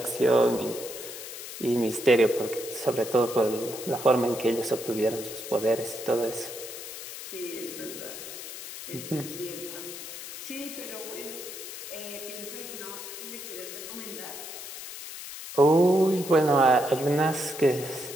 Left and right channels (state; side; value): noise; left; hiss, 10 dB below the sound